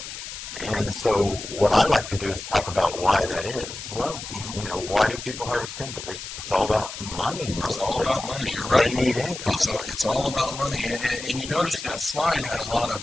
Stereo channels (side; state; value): left; noise; hiss, 10 dB below the sound